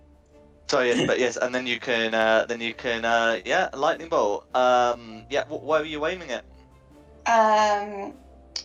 Sorry, yes, but yes, and then you can, yeah, lightning bolt. Yeah, where are you aiming it?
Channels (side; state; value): both; identical; correlation 1.00